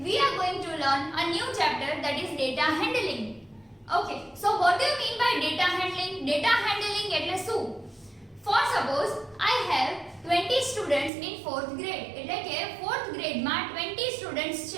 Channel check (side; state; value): left; drops out; at 11.1 s